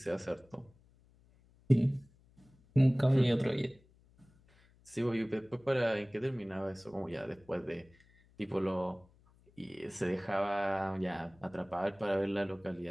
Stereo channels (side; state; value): left; noise; hum, 29 dB below the sound